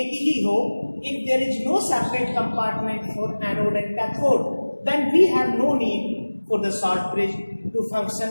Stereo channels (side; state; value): both; inverted; correlation -1.00